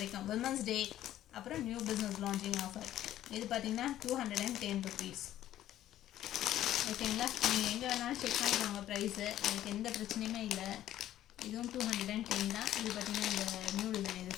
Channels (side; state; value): right; quieter; 12.7 dB